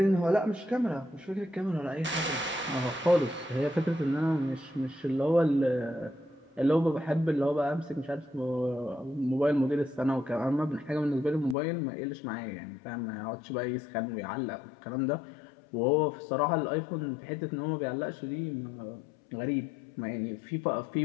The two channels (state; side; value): drops out; right; at 11.6 s